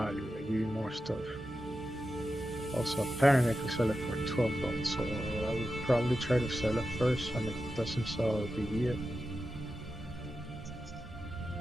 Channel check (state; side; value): normal; both; correlation 0.91